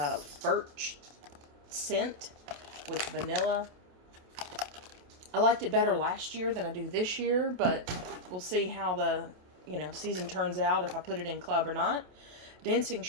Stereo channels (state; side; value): late; left; 28 ms